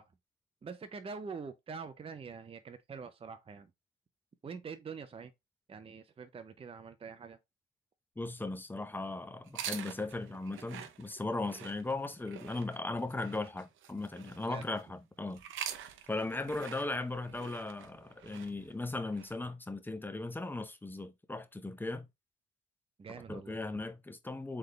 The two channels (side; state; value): both; normal; correlation 0.73